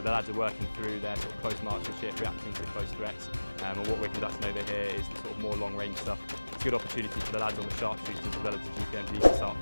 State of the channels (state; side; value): inverted; both; correlation -1.00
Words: lads are working through their sort of close marksmanship, reacting to close threats. And what we're conducting over here is the sort of more long range stuff. It's a good opportunity for the lads on the sharpshooters as well as the GPMGs to start